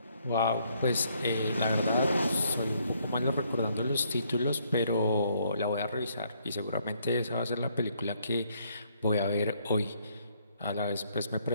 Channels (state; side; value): inverted; both; correlation -0.69